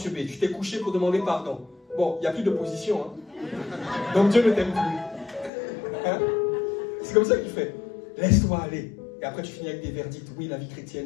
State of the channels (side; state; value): right; drops out; at 5.5 s